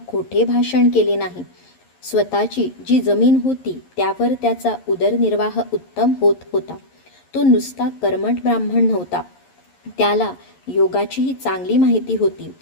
खोटे भाषण केले नाही. स्वतःची जी जमीन होती त्यावर त्याचा उदरनिर्वाह उत्तम होत होता. तो नुसता कर्मठ ब्राह्मण नव्हता. त्याला योगाचीही चांगली माहिती होती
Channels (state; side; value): late; right; 11 ms